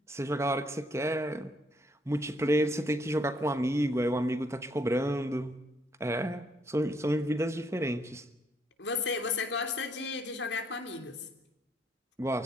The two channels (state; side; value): normal; both; correlation 0.69